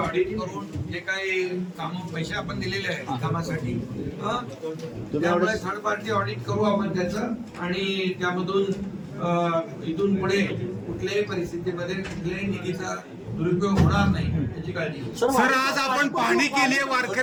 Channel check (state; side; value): identical; both; correlation 1.00